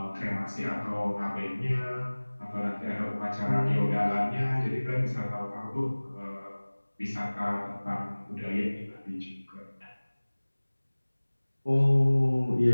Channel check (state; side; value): inverted; both; correlation -1.00